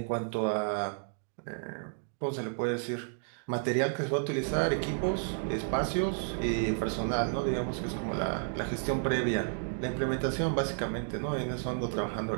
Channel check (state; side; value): silent; left; digital silence